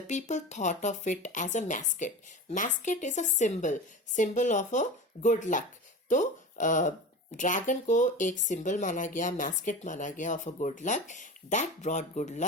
people thought of it as a mascot. Mascot is a symbol of a good luck. तो dragon को एक symbol माना गया, mascot माना गया of a good luck. That brought good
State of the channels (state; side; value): normal; both; correlation 0.31